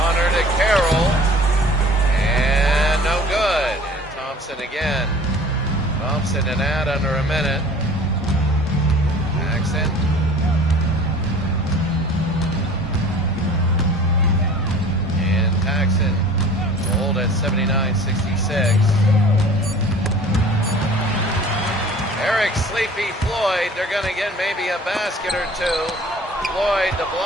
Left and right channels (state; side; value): normal; both; correlation 0.46